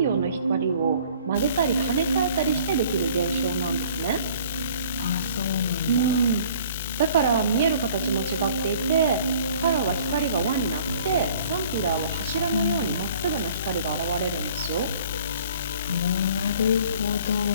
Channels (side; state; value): both; inverted; correlation -0.53